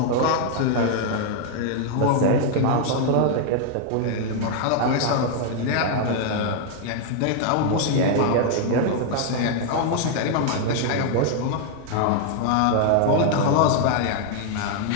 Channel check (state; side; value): different; both; correlation 0.00